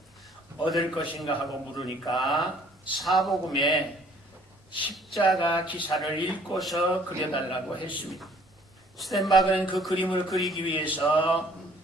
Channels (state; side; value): normal; both; correlation 0.58